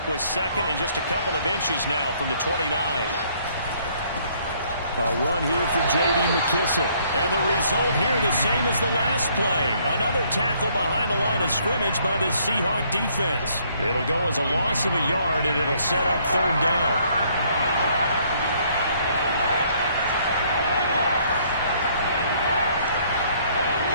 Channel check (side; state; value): both; inverted; correlation -0.65